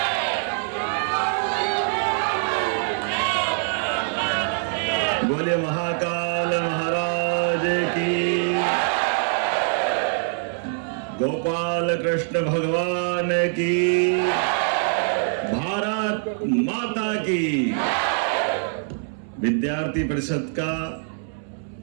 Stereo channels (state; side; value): silent; left; 63 dB below the other